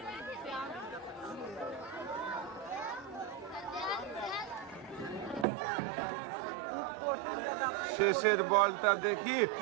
শেষের বলটা দেখি,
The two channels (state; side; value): drops out; left; at 5.5 s